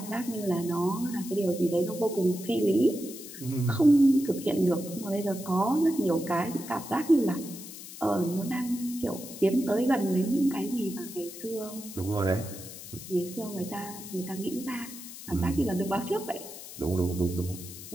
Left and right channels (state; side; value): noise; left; hiss, 13 dB below the sound